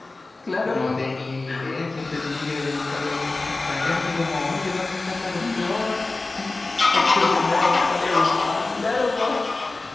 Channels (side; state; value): right; quieter; 3.3 dB